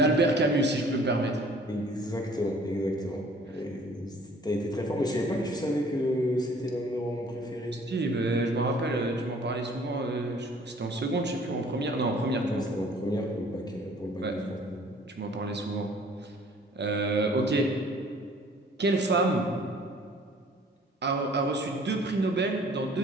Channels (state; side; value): normal; both; correlation 0.54